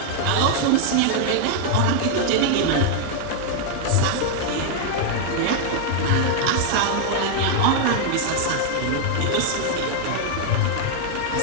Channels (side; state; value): both; different; correlation 0.00